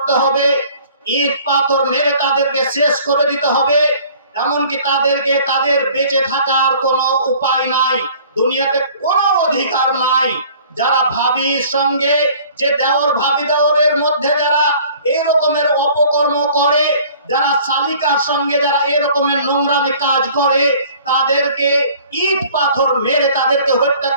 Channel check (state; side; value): inverted; both; correlation -0.51